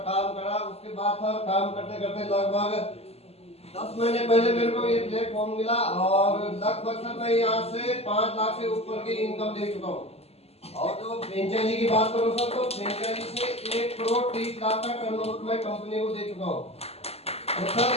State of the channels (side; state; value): right; late; 0.29 ms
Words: काम करा। उसके बाद सर काम करते करते लगभग 10 महीने पहले मेरे को ये प्लेटफॉर्म मिला, और लगभग सर मैं यहाँ से 5 लाख से ऊपर की इनकम ले चुका हूँ। और जो फ्रेंचाइजी की बात करूँ सर, तो फ्रेंचाइजी से 1 करोड़ 30 लाख का टर्नओवर मैं कंपनी को दे चुका हूँ। तो सर